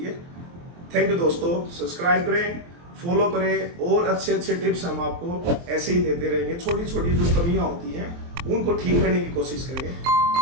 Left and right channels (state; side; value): late; left; 23 ms